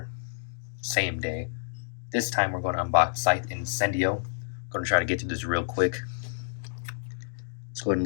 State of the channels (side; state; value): right; silent; digital silence